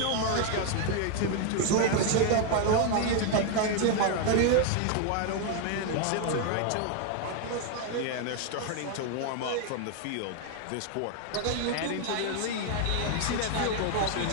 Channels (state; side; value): different; both; correlation 0.00